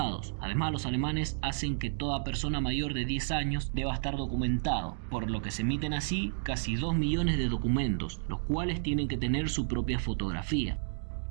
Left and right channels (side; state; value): left; silent; digital silence